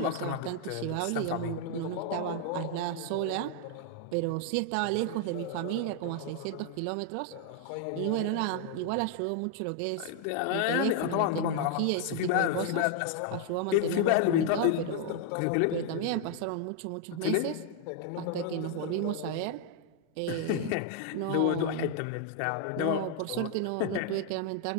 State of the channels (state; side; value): different; both; correlation 0.00